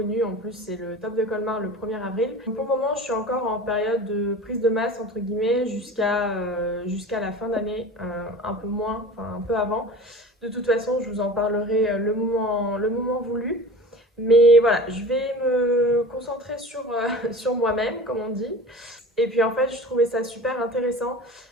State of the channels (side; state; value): both; normal; correlation 0.38